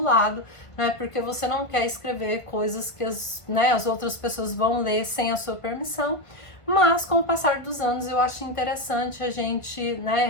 né? Porque você não quer escrever coisas que as outras pessoas vão ler sem a sua permissão. Mas com o passar dos anos, eu acho interessante a gente, né,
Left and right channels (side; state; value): right; late; 1.5 ms